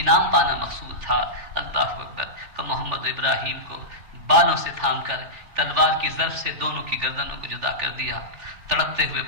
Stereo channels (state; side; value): late; left; 3.2 ms